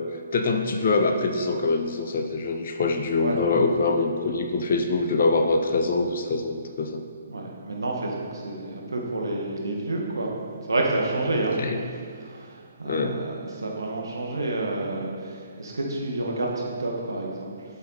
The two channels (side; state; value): both; inverted; correlation -0.63